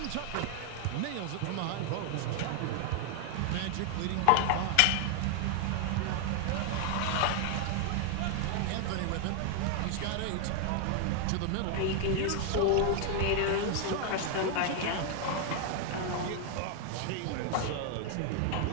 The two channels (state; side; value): different; both; correlation 0.00